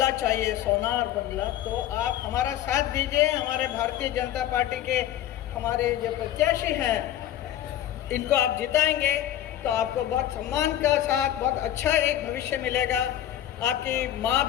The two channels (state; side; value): quieter; right; 12.0 dB